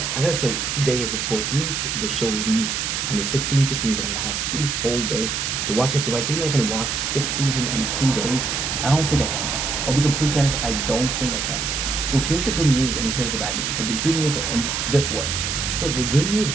I gotta say today is the 14th. The show leaves on the 16th, which means that I have 2 whole days to watch it. Do I think that I can watch 6 seasons in 2 days? I don't think I can. I'll be completely honest, I don't think I can. So here's the good news and here's the bad news. But the good news and before. So the good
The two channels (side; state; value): right; noise; hiss, 1 dB below the sound